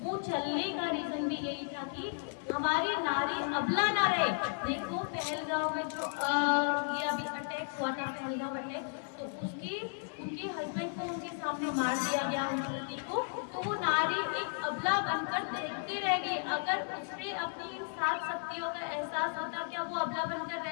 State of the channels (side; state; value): right; silent; 55 dB below the other